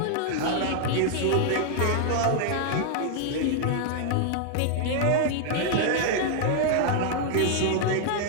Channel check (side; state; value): both; different; correlation 0.00